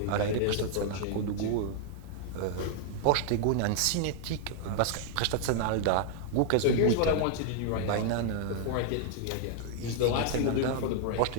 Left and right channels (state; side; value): different; both; correlation 0.00